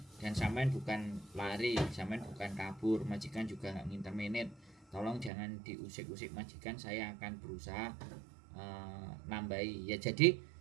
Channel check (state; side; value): drops out; left; at 5.3 s